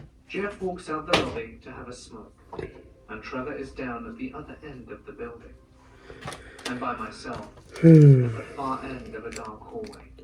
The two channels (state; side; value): identical; both; correlation 1.00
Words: Jeff walks out the lobby to have a smoke, and Trevor is down at the other end of the building. I'm by myself at the far end of a dark hallway.